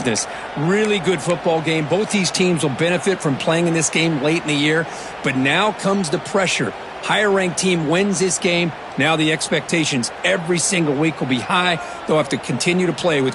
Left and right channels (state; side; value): identical; both; correlation 1.00